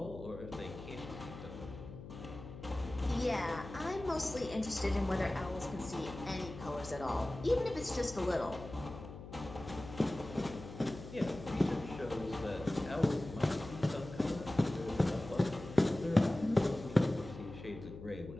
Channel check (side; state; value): left; noise; hum, 13 dB below the sound